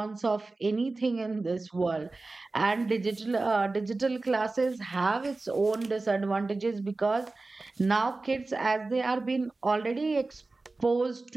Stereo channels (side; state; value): left; quieter; 3.4 dB